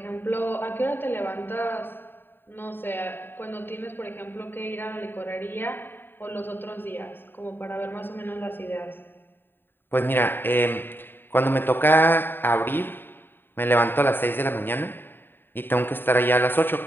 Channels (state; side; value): late; right; 0.097 ms